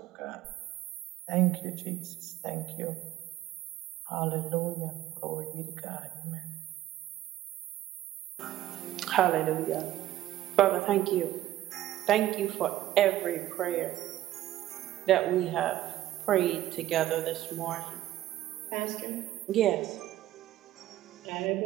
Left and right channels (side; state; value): left; quieter; 13.9 dB